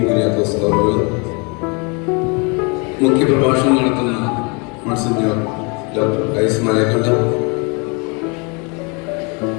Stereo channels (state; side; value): quieter; right; 31.9 dB